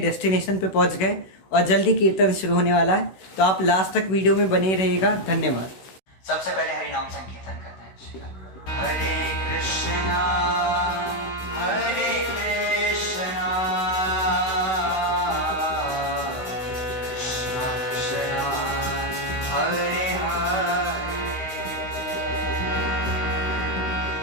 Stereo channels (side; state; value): right; late; 16 ms